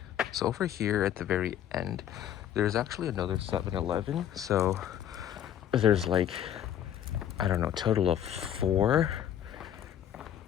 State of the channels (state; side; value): quieter; right; 10.5 dB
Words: So over here at the very end, there's actually another 7-Eleven. So there's like, I don't know, total of four